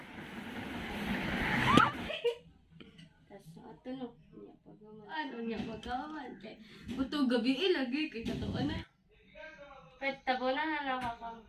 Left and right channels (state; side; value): identical; both; correlation 1.00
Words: Ano niya pagkawan kay buto gabi lagi kay katuan na. Pet tabunan na